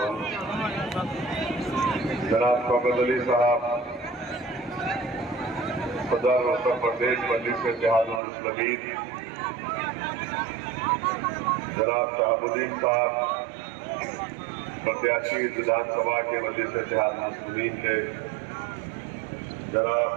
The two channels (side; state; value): left; drops out; at 8.2 s